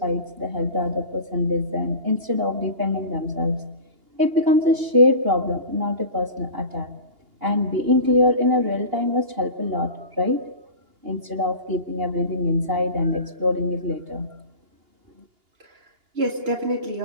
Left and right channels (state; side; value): late; left; 2.8 ms